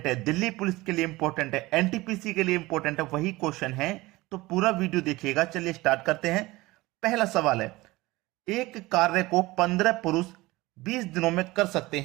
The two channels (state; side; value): quieter; left; 20.2 dB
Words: है, दिल्ली पुलिस के लिए इंपॉर्टेंट है, एनटीपीसी के लिए इंपॉर्टेंट है, वही क्वेश्चन है। तो पूरा वीडियो देखिएगा। चलिए स्टार्ट करते हैं। पहला सवाल है, एक कार्य को 15 पुरुष 20 दिनों में कर सकते